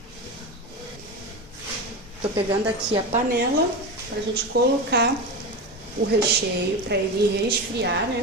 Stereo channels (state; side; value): normal; both; correlation 0.22